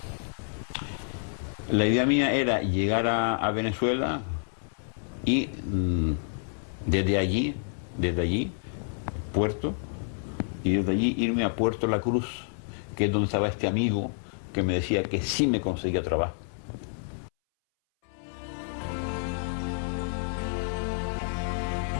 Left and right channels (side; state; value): right; silent; 59 dB below the other